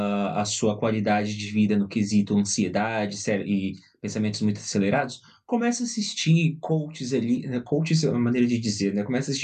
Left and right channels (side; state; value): both; identical; correlation 1.00